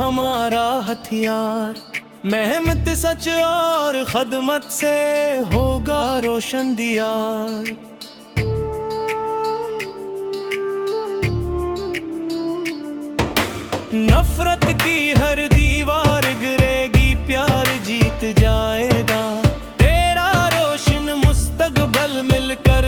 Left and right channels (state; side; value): identical; both; correlation 1.00